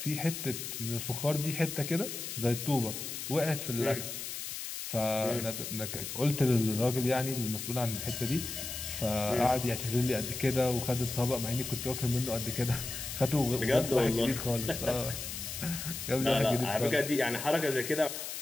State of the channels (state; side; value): noise; left; hiss, 6 dB below the sound